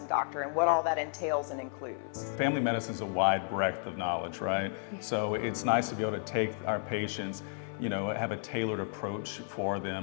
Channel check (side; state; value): right; silent; 56 dB below the other